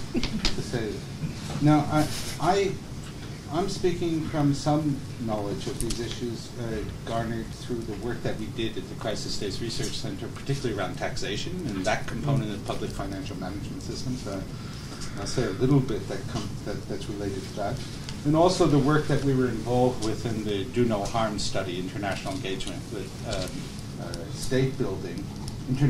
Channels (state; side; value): identical; both; correlation 1.00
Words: say. Now, I'm speaking from some knowledge of these issues garnered through the work that we did at the Crisis States Research Center, particularly around taxation and that component of public financial management systems. I'll say a little bit that's related to that. And also the work that we were involved with in the Do No Harm study, international engagement with state building,